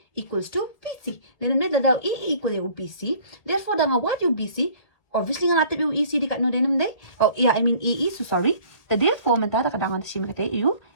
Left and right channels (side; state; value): right; late; 1.6 ms